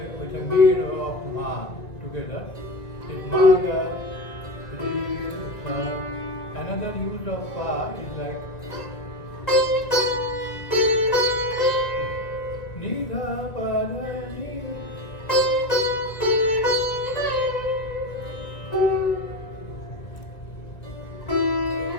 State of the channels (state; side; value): late; right; 2.1 ms